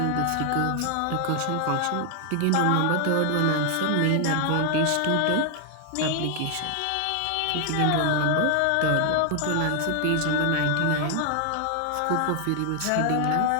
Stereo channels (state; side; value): different; both; correlation 0.00